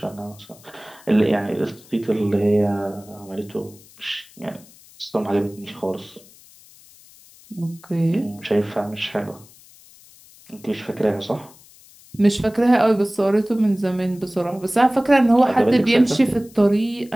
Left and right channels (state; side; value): noise; left; hiss, 25 dB below the sound